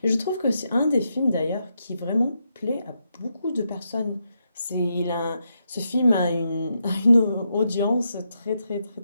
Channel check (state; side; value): inverted; both; correlation -0.83